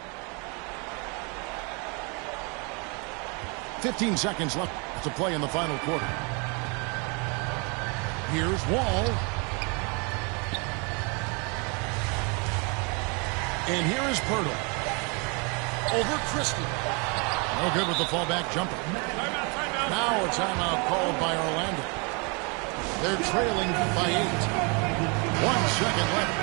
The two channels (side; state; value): left; quieter; 32.6 dB